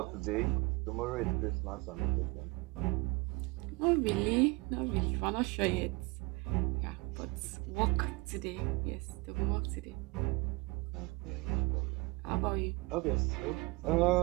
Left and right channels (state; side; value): quieter; left; 25.2 dB